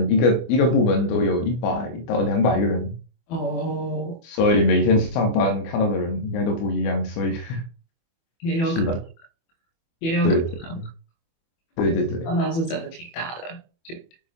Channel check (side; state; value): right; late; 24 ms